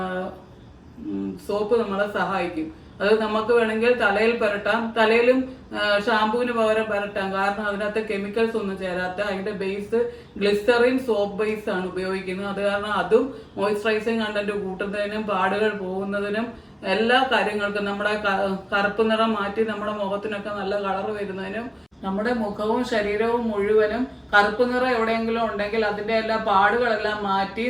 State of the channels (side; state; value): both; identical; correlation 1.00